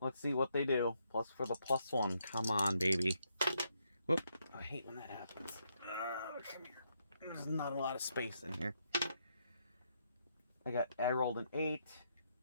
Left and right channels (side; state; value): both; inverted; correlation -0.77